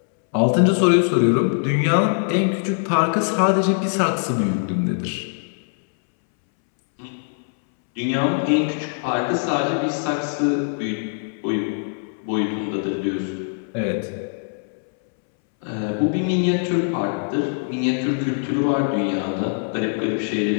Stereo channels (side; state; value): right; silent; 64 dB below the other